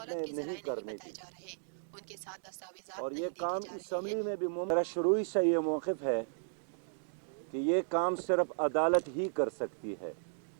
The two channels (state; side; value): silent; left; digital silence